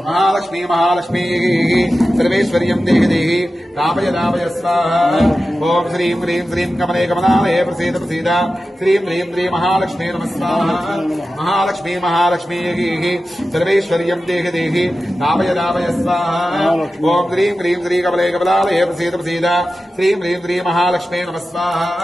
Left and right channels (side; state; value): both; normal; correlation 0.93